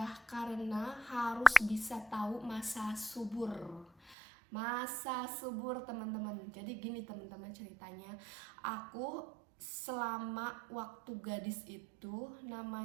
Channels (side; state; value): left; drops out; at 4.2 s